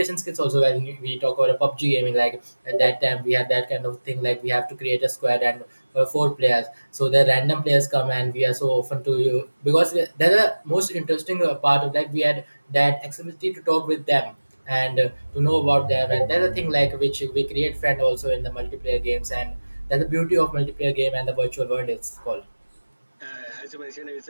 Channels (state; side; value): inverted; both; correlation -1.00